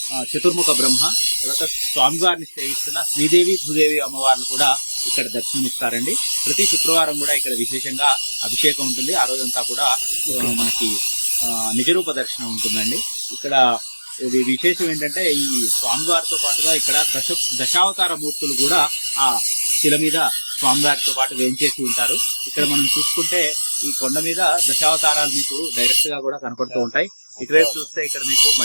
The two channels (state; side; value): inverted; both; correlation -1.00